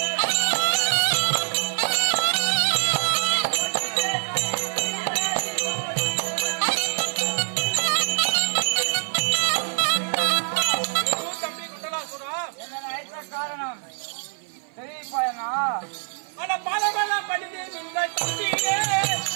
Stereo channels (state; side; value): silent; left; 56 dB below the other